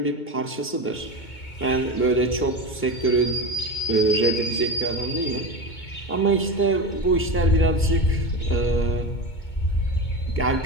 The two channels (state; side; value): late; right; 2.2 ms